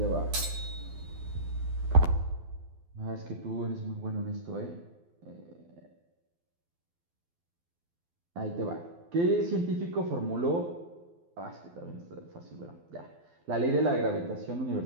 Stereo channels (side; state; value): left; late; 12 ms